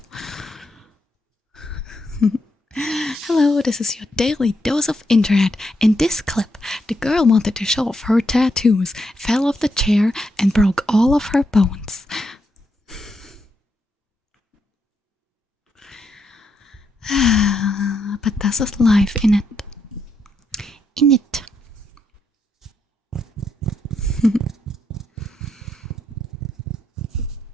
Hello, this is your daily dose of internet. In this clip, the girl wanted to show off her tattoos, fell off the chair, and broke all of her bones. But this is life, in it. In it.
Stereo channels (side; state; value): both; normal; correlation 0.80